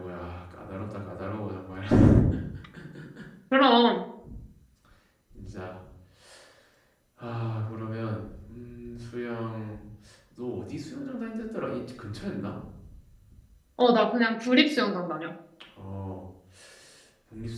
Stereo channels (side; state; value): both; identical; correlation 1.00